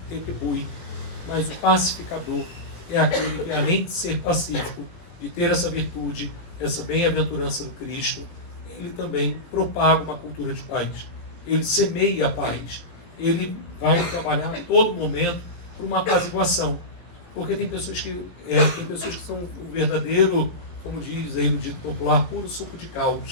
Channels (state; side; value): late; right; 18 ms